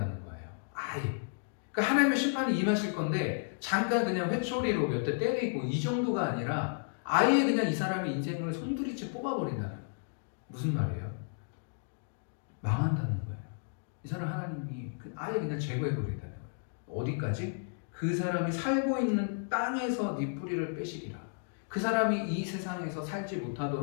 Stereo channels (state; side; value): silent; right; digital silence